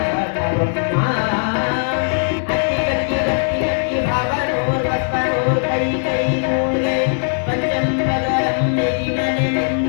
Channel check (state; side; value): silent; right; digital silence